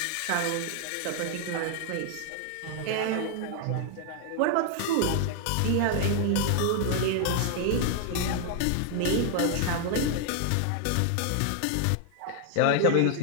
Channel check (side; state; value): both; different; correlation 0.00